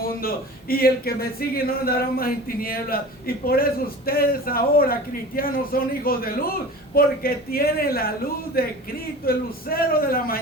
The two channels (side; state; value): both; normal; correlation 0.37